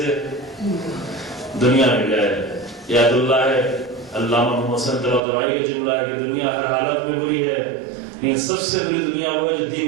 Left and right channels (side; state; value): left; drops out; at 5.2 s